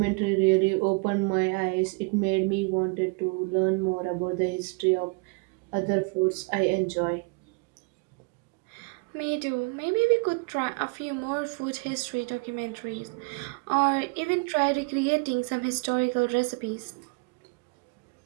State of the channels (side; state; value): left; quieter; 31.0 dB